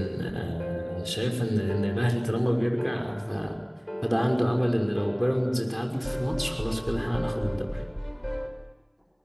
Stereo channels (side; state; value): both; identical; correlation 1.00